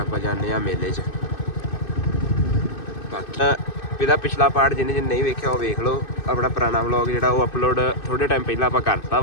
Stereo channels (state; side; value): late; right; 2.6 ms